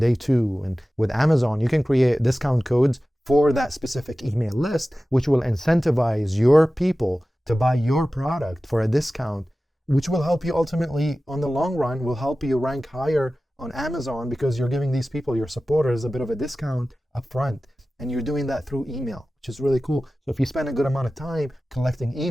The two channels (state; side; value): normal; both; correlation 0.96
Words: 2. And with Amazon, you can create discount codes for that specific email list, which will incentivize your people to buy your product for a discount, which will help you ultimately, on the long run, will help you rank higher on Amazon because you're giving these people, your supporters, a bit of a discount up front. And you're doing that through email, which is really cool. So if you spend a good amount of time collecting